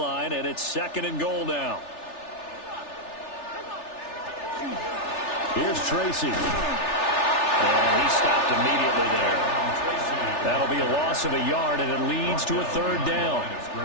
and it's 2nd and goal now. Here's Tracy. And he stopped immediately there. That'll be a loss of a yard, and it leads to a 3rd down.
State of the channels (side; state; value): right; late; 3.4 ms